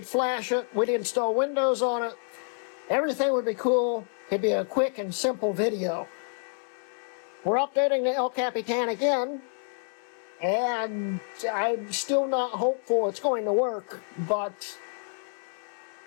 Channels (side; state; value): right; silent; digital silence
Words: flash it, we'd install Windows on it, everything would be cool, it'd be a quick and simple video. We're updating the El Capitan again, and I'm still not hopeful it's going to work, but